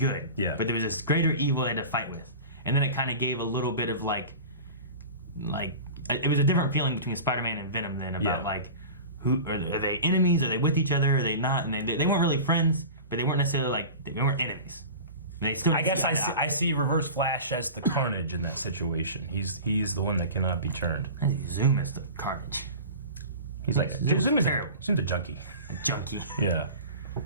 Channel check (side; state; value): both; inverted; correlation -0.34